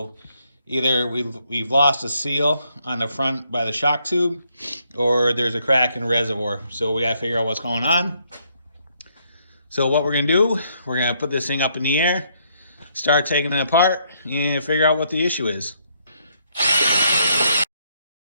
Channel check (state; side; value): inverted; both; correlation -0.72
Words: either we've lost a seal on the front by the shock tube, or there's a crack in the reservoir. So we gotta figure out what's going on. So what we're gonna do, we're gonna put this thing up in the air, start taking it apart, and figure out what the issue is.